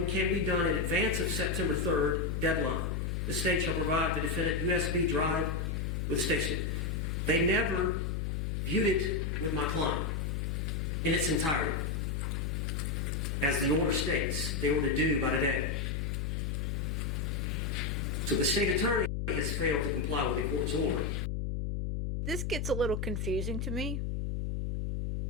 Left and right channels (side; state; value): left; noise; hum, 1 dB below the sound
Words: can be done in advance of September 3rd deadline. The state shall provide the defendant USB drive with the station. They never viewed it with my client in its entirety. As the order states, they were to do by today. So the state attorney has failed to comply with the court's order. This gets a little confusing to me